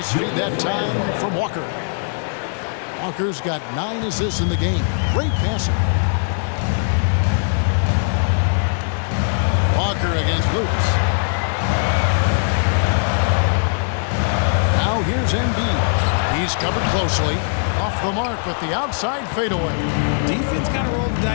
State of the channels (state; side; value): silent; right; digital silence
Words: feed that time from Walker. Walker's got 9 assists in the game. Great passing. Walker against Lewis. Now here's Embiid. He's covered closely. Off the mark with the outside fadeaway. Defense kind of rolled the